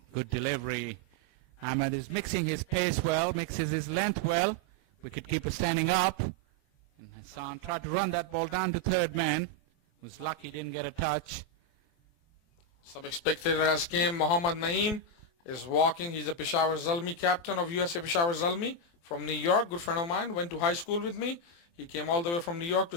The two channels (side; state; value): right; late; 23 ms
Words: Good delivery. Ahmed is mixing his pace well, mixes his length well. Wicketkeeper standing up. And Hassan tried to run that ball down to third man. Was lucky, didn't get a touch. Some spectator has came. Mohammad Naeem is walking. He's a Peshawar Zalmi captain of USA Peshawar Zalmi from New York. Good friend of mine. Went to high school with me. He came all the way from New York to